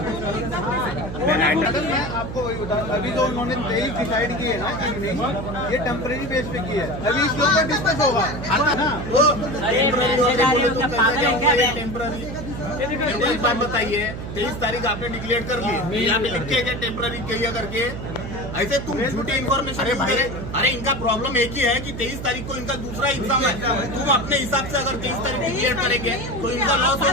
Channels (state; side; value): noise; right; hum, 8 dB below the sound